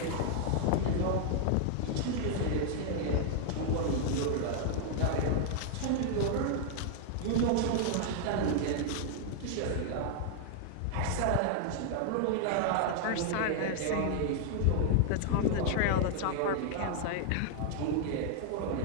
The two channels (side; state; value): both; different; correlation 0.00